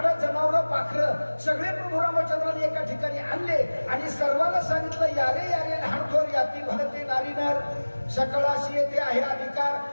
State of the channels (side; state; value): both; inverted; correlation -1.00